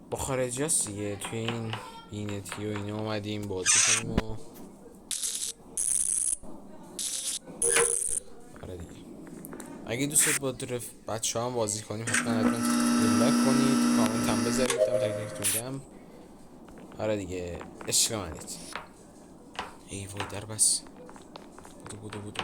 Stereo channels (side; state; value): both; identical; correlation 1.00